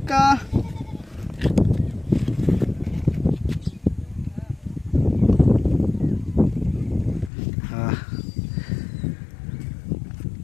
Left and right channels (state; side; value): drops out; right; at 7.3 s